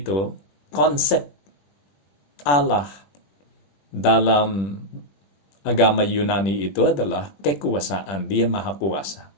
konsep Allah dalam agama Yunani itu adalah kekuasaan. Dia maha kuasa.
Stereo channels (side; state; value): right; late; 21 ms